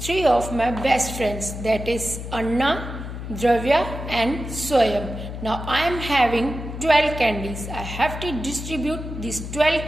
of my best friends, that is Anna, Dravya and Swayam. Now I am having 12 candies. I have to distribute these 12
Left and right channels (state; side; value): noise; left; hum, 8 dB below the sound